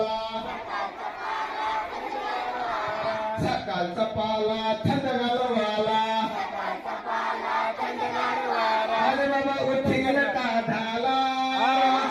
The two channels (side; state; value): both; identical; correlation 1.00